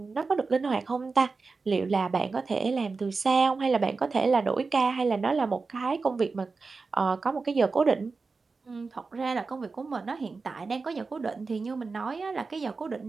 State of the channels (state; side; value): quieter; left; 4.3 dB